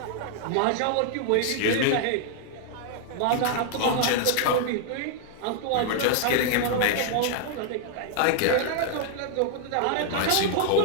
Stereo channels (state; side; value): different; both; correlation 0.00